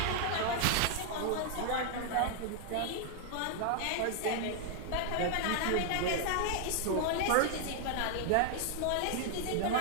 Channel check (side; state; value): both; different; correlation 0.00